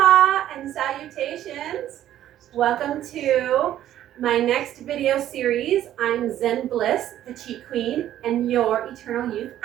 and salutations. Welcome to my next video series. I'm Zen Bliss, the Chi Queen, and your Eternal Youth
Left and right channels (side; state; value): left; quieter; 12.1 dB